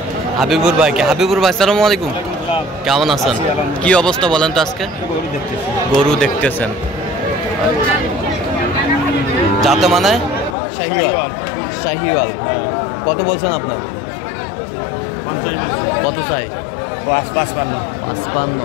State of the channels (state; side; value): drops out; right; at 10.6 s